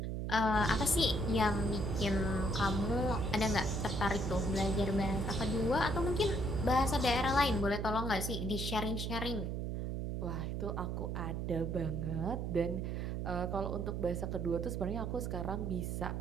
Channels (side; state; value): right; noise; hum, 2 dB below the sound